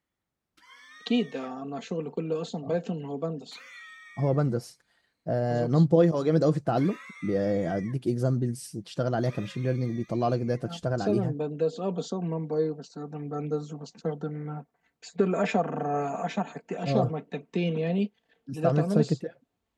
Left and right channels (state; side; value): identical; both; correlation 1.00